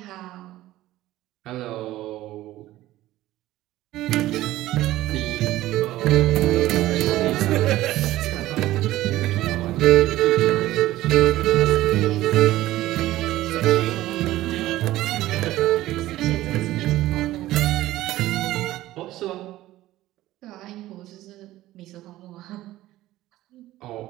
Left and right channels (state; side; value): quieter; left; 15.7 dB